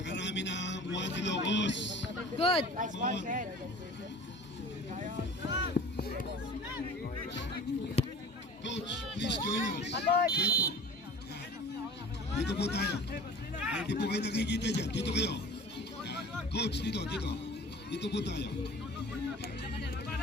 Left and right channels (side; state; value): both; normal; correlation 0.42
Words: na ang Juan Ilocos. Good. Come on. Coach, please join us. Dito. Dito po tayo. Ay, hindi po kayo nakikita dyan. Dito kayo. Coach, dito. Dito po tayo.